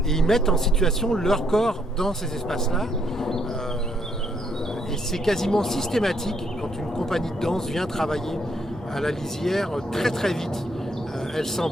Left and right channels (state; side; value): normal; both; correlation 0.72